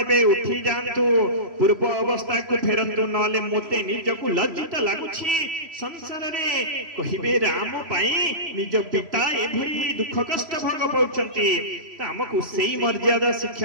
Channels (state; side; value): late; left; 3.0 ms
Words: उठी जानतु पूर्व अवस्था को फेरंतु नले मोते निजको लज्जित लागुछि संसार रे कहिबे राम पाई निज पिता एभली दुख कष्ट भोग पाउचंती त हमकु सेही मर्यादा